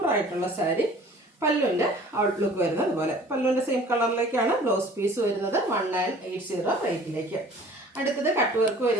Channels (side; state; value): both; normal; correlation 0.49